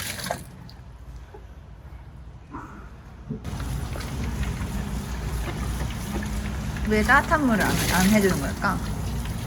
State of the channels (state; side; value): identical; both; correlation 1.00